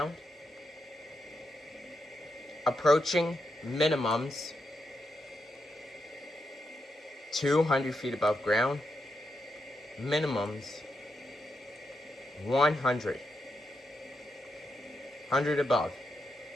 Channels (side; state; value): both; normal; correlation 0.84